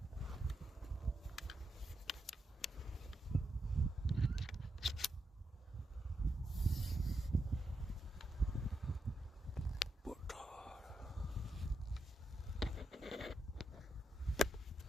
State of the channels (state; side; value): normal; both; correlation 0.84